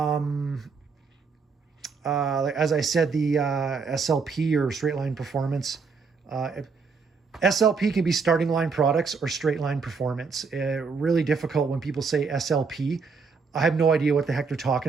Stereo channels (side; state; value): left; quieter; 5.1 dB